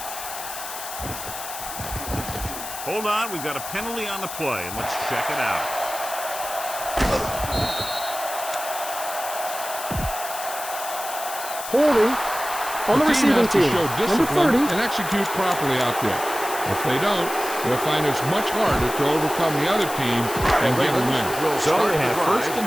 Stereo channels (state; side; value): noise; left; hiss, 9 dB below the sound